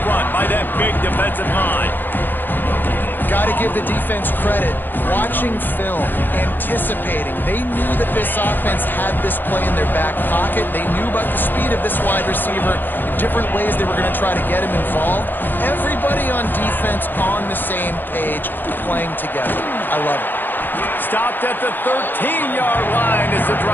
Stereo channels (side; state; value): right; late; 0.092 ms